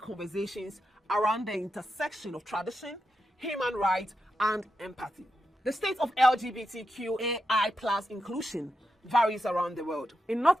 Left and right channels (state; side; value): normal; both; correlation 0.87